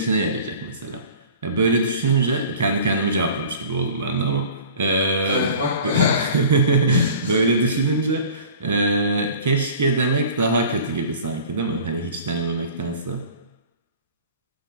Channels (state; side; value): inverted; both; correlation -0.43